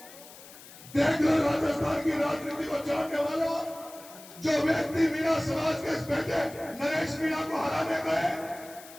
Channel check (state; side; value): noise; left; hiss, 18 dB below the sound